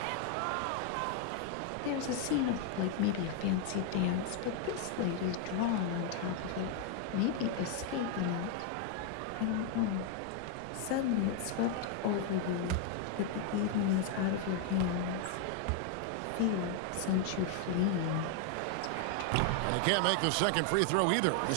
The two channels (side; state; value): both; different; correlation 0.00